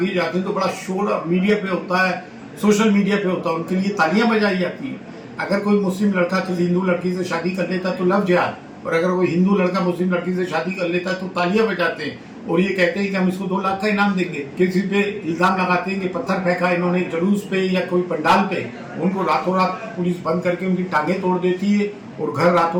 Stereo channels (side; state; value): both; identical; correlation 1.00